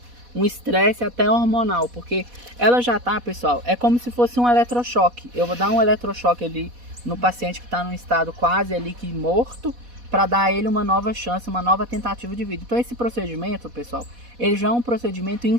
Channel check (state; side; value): late; left; 4.1 ms